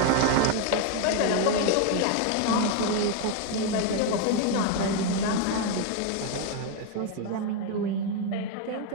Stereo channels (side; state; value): both; different; correlation 0.01